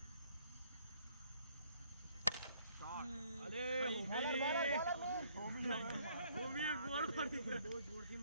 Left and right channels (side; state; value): both; inverted; correlation -0.64